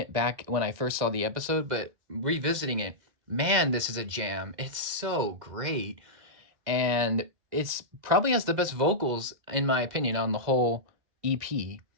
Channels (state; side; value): late; left; 2.1 ms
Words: back when I first saw the episode, but revisiting it, man, this is a jam. It's so great, and it's probably has the best vocals in my opinion on the whole EP.